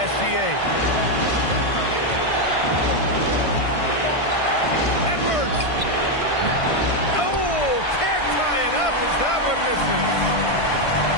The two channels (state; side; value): late; right; 1.5 ms